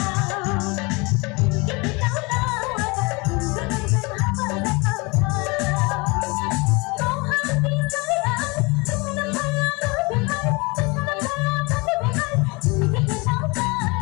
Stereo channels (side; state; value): right; quieter; 27.2 dB